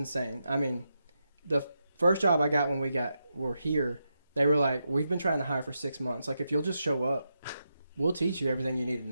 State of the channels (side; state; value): both; inverted; correlation -0.85